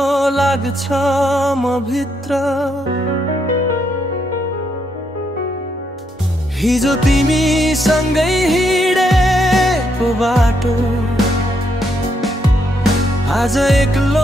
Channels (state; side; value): normal; both; correlation 0.77